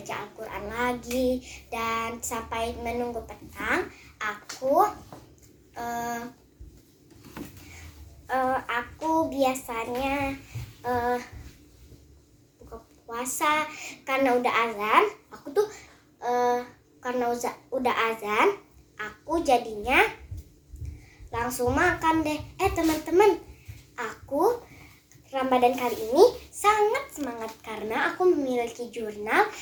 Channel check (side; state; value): both; identical; correlation 1.00